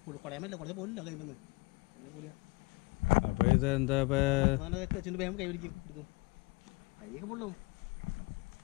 കുടയാൻ പറ്റില്ല. കുറച്ച് പോലില്ല കൈ നിന്ന് കുറഞ്ഞ പോലെയാ. അപ്പോൾ ഇത് എന്താ തെച്ചിൻ്റെ വേഗം കൈ പിടിക്കും എടുക്കും. കൈയൊക്കെ പൊള്ളും.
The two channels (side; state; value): right; quieter; 25.2 dB